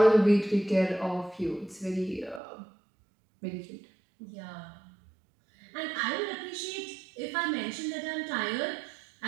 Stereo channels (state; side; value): drops out; left; at 2.4 s